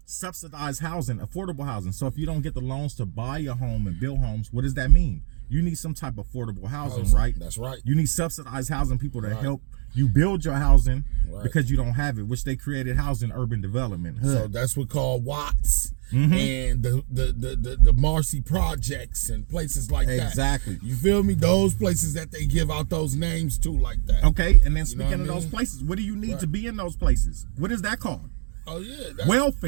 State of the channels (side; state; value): left; silent; 56 dB below the other